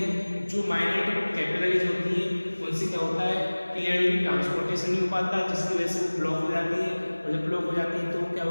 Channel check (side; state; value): both; inverted; correlation -1.00